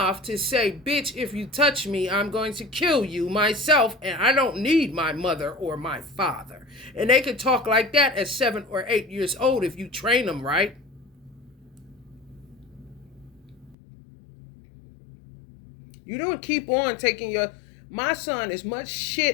to say, bitch, if you touch me, I'm going to kill you myself, and I don't need my mother or my father. And they can talk like that at 7 or 8 years old if you train them right. You don't keep on taking your... My son is much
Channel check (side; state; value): right; drops out; at 13.8 s